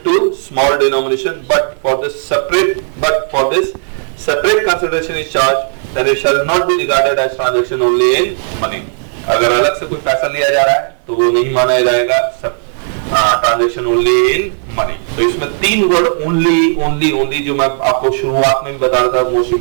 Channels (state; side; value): silent; left; 69 dB below the other